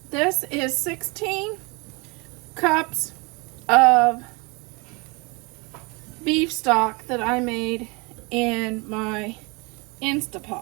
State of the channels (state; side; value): quieter; left; 28.5 dB